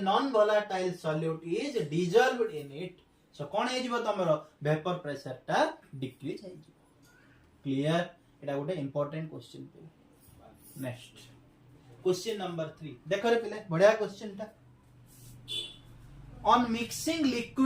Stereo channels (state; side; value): identical; both; correlation 1.00